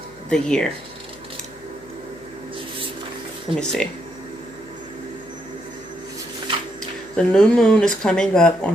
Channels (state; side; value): noise; left; hum, 26 dB below the sound